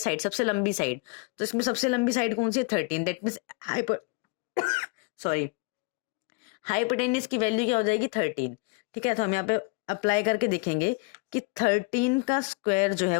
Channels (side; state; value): right; quieter; 28.7 dB